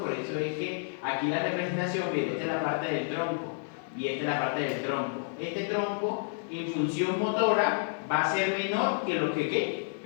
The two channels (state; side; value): silent; right; 58 dB below the other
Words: eso es que aquí la representación viene, esta es la parte del tronco, y esta es la parte del tronco. Este tronco, en función motora, va a ser menor que lo que